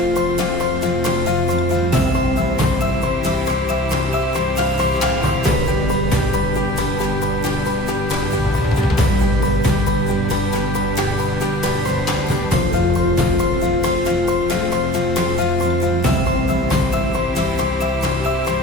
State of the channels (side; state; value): both; normal; correlation 0.42